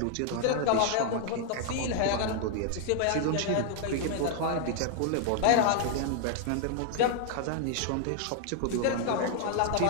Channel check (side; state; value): both; different; correlation 0.00